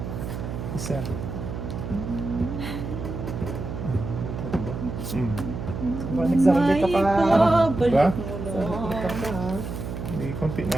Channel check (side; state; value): right; noise; hum, 6 dB below the sound